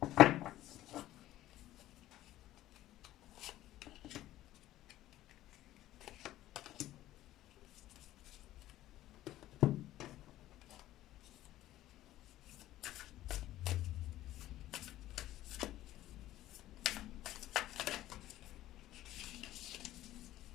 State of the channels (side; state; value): right; quieter; 14.6 dB